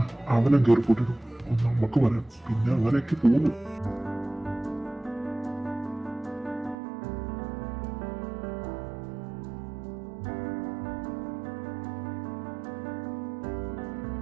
അവനെ കയറിപ്പോട്ടിടും, നമുക്ക് വരാം. പിന്നെ അങ്ങനെയൊക്കെ പോകുന്നു.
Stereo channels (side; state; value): left; drops out; at 6.8 s